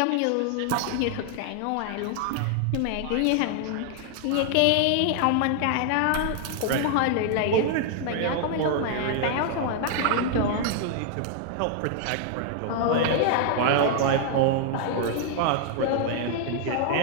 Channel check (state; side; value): different; both; correlation 0.00